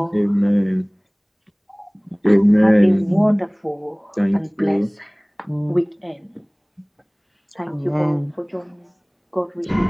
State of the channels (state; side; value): identical; both; correlation 1.00